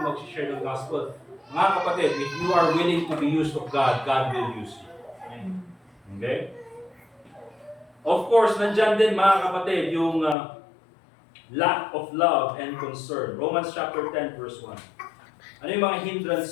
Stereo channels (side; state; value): right; drops out; at 10.4 s